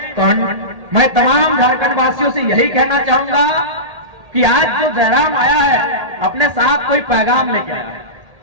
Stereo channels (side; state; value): left; late; 1.8 ms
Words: तमाम झारखंड वासियों से यही कहना चाहूंगा कि आज जो जयराम आया है, अपने साथ कोई पैगाम लेके आया है।